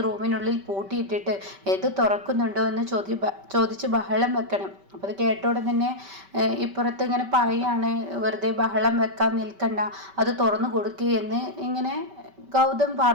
റൂമിനുള്ളിൽ പൂട്ടിയിട്ടിട്ട് ഇത് തുറക്കുന്നുണ്ടോ എന്ന് ചോദിച്ച് ബഹളം വെക്കണം. അപ്പോൾ അത് കേട്ടോടെ തന്നെ ഇപ്പുറത്ത് ഇങ്ങനെ പറയാണ്, വെറുതെ ബഹളം വെക്കാൻ നിൽക്കണ്ട, അത് തുറന്നു കൊടുക്കുകയെന്ന് ഇങ്ങനെ ഗൗതം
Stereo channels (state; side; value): late; left; 5.2 ms